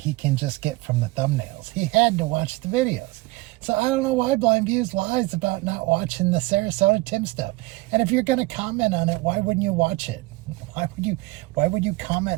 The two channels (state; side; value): quieter; left; 21.7 dB